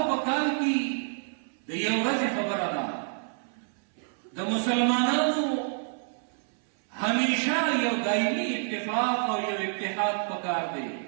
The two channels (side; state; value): left; silent; 59 dB below the other